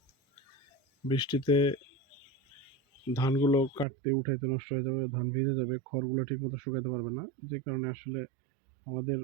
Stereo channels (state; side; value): drops out; left; at 3.9 s